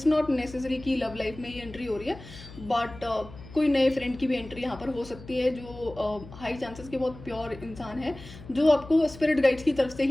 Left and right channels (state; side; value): noise; left; hum, 17 dB below the sound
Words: नॉट नेसेसरी कि लव लाइफ में ही एंट्री हो रही है, बट कोई नए फ्रेंड की भी एंट्री यहाँ पर हो सकती है, जो हाई चांसेस के बहुत प्योर इंसान है, जो आपको स्पिरिट गाइड्स की तरफ से